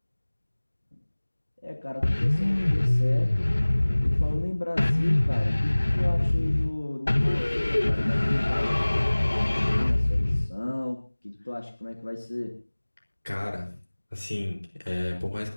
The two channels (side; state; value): both; inverted; correlation -1.00